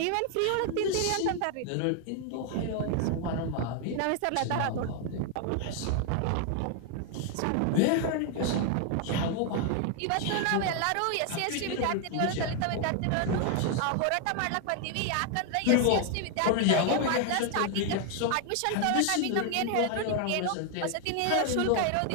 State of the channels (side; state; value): both; different; correlation 0.00